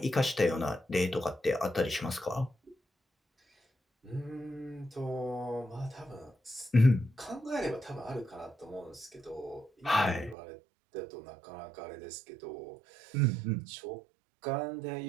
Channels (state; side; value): drops out; left; at 10.4 s